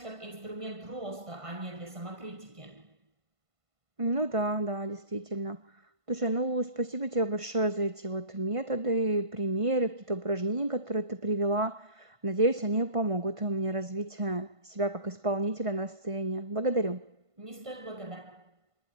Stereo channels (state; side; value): late; left; 1.5 ms